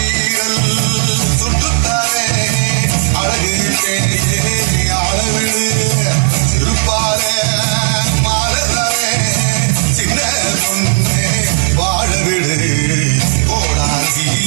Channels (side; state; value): left; silent; digital silence